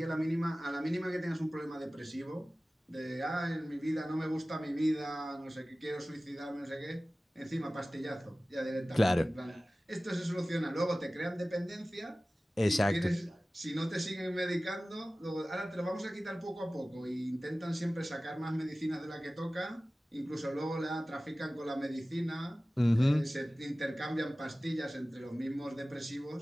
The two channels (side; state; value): both; normal; correlation 0.97